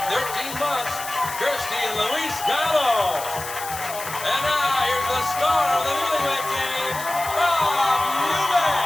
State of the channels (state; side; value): noise; left; hiss, 10 dB below the sound